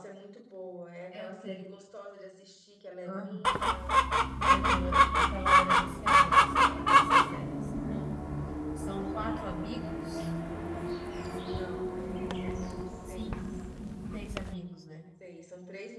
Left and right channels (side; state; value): both; identical; correlation 1.00